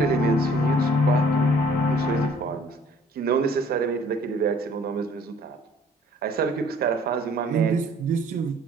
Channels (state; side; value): normal; both; correlation 0.56